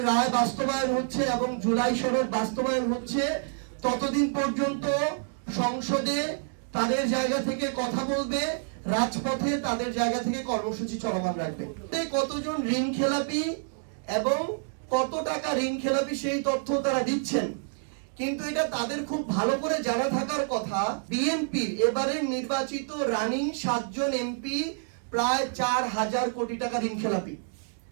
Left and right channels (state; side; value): silent; left; digital silence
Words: রায় বাস্তবায়ন হচ্ছে এবং জুলাই সনদ বাস্তবায়ন হচ্ছে ততদিন পর্যন্ত সংসদে তাদের জায়গা থেকে কথা বলবে, রাজপথে তাদের জায়গা থেকে কর্মসূচি চলমান রাখবে। কতজন ঋণ খেলাপি এবং কত টাকা ঋণ খেলাপি সেই তথ্য তারা দিচ্ছেন, কিন্তু এটা তাদের খুব ভালো করে জানা থাকার কথা। বিএনপির এবারের নির্বাচিত রানিং 7 জন এমপি প্রায় 4000 কোটি টাকা ঋণ খেলাপি,